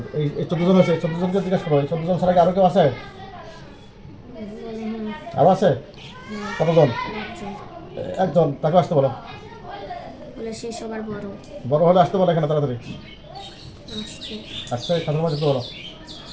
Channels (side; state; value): both; identical; correlation 1.00